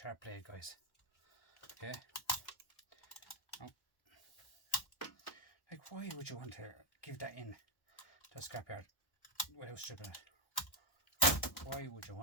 blade, guys. Okay. Now, like, why would you want to give that in to a scrapyard without stripping it? Why would you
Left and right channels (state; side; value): late; right; 1.1 ms